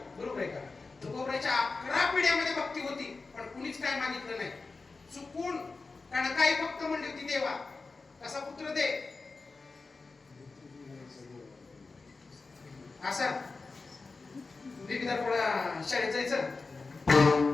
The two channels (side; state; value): right; quieter; 4.0 dB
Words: बरोबर आहे का. तुकोबऱ्याच्या 11 पिढ्यामध्ये भक्ती होती पण कुणीच काय मागितलं नाही. चुकून कारण काही भक्त म्हणली होती देवा कसा पुत्र दे असा थोडा शाळेत जायचं